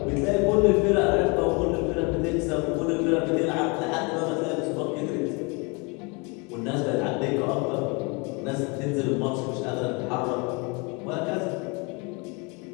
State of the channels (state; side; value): quieter; right; 30.4 dB